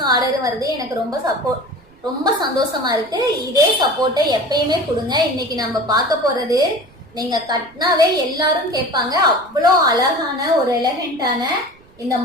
ஆர்டரும் வருது. எனக்கு ரொம்ப சந்தோஷமா இருக்கு. இதே சப்போர்ட்டை எப்பயுமே கொடுங்க. இன்னைக்கு நம்ம பார்க்க போறது நீங்க கட்டினாவே எல்லாரும் கேட்பாங்க, அவ்வளோ அழகான ஒரு எலகண்டான இந்த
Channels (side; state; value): right; noise; rumble, 28 dB below the sound